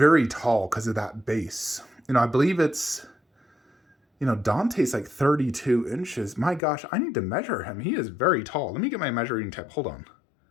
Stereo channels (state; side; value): drops out; right; at 6.6 s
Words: tall because of that base. You know, I believe it's, you know, Dante's like 32 inches. My gosh, I need to measure him. He is very tall. Let me get my measuring tape. Hold on.